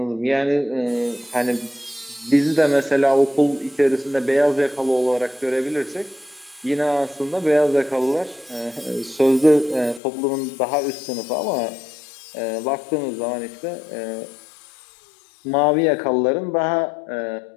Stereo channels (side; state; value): right; drops out; at 10.0 s